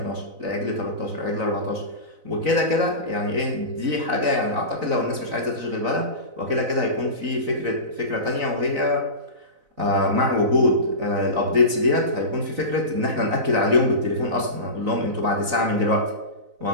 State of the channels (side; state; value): left; late; 4.0 ms